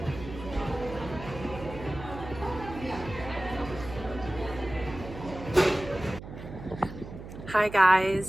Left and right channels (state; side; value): noise; right; hum, 12 dB below the sound